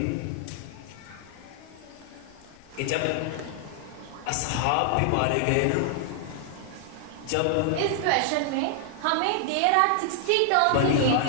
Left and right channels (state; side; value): different; both; correlation 0.00